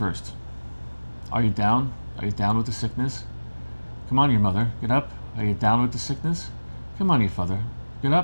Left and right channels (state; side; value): inverted; both; correlation -1.00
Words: Are you down? Are you down with the sickness? Come on, your mother, get up. Are you down with the sickness? Come on, your father, get